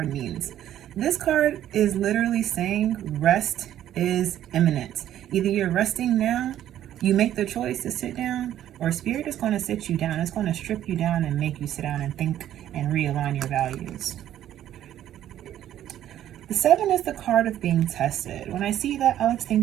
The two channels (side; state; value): left; quieter; 11.7 dB